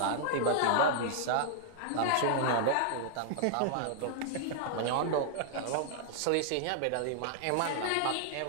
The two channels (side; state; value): both; different; correlation -0.01